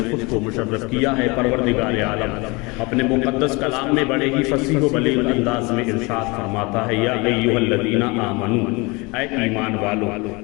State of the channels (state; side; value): quieter; right; 26.3 dB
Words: خود کو مشرف کیا ہے۔ پروردگار عالم اپنے مقدس کلام میں بڑے ہی فصیح و بلیغ انداز میں ارشاد فرماتا ہے، یا ایھا الذین آمنوا، اے ایمان والو،